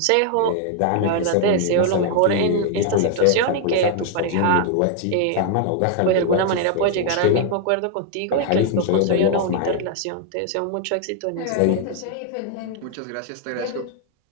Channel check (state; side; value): different; both; correlation 0.00